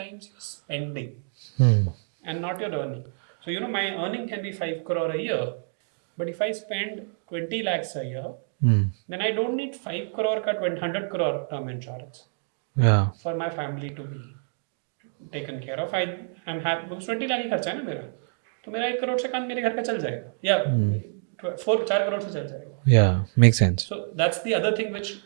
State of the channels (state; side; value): silent; left; digital silence